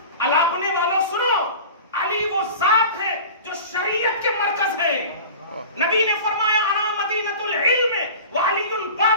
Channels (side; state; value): both; inverted; correlation -0.36